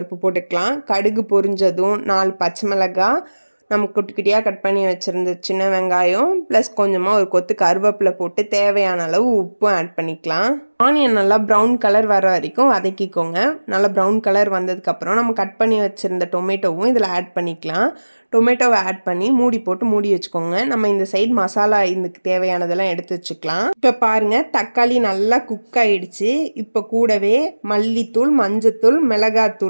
போட்டுக்கலாம். கடுகு பொரிஞ்சதும் 4 பச்சை மிளகாய், நம்ம குட்டி குட்டியாக கட் பண்ணி வச்சுருந்த சின்ன வெங்காயம் ப்ளஸ் கொஞ்சமாக ஒரு கொத்து கருவேப்பிலை போட்டு தேவையான அளவு உப்பும் ஆட் பண்ணிக்கலாம். ஆனியன் நல்லா ப்ரௌன் கலர் வர வரைக்கும் வதக்கிக்கோங்க. நல்லா ப்ரௌன் கலர் வந்ததுக்கப்புறம் நம்ம கட் பண்ணி வச்சுருந்த டொமேட்டோவும் இதில் ஆட் பண்ணிக்கலாம். டொமேட்டோவை ஆட் பண்ணி மூடி போட்டு மூடி வச்சுக்கோங்க. நம்ம இந்த சைடு மசாலா இதுக்கு தேவையானதெல்லாம் எடுத்து வச்சுக்கலாம். இப்போ பாருங்கள், தக்காளி நல்லா குக் ஆகிடுச்சு. இப்போ கூடவே மல்லித்தூள், மஞ்சத்தூள்,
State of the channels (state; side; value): inverted; both; correlation -1.00